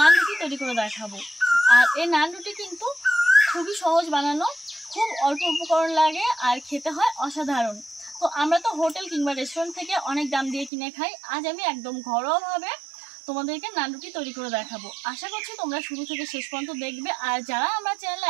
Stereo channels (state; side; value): drops out; left; at 10.7 s